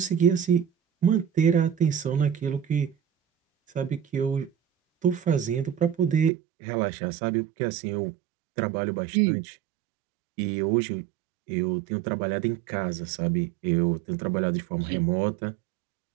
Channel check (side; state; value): left; drops out; at 6.3 s